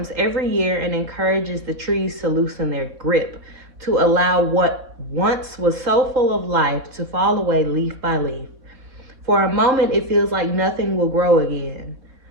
every year and encourages the trees to loosen their grip, to allow what once was so full of life to fall away leaf by leaf. For a moment, it feels like nothing will grow again.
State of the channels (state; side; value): late; left; 3.7 ms